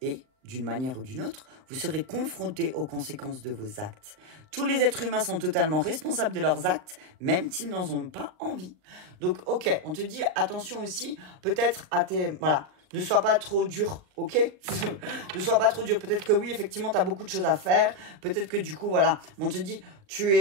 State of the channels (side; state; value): left; late; 39 ms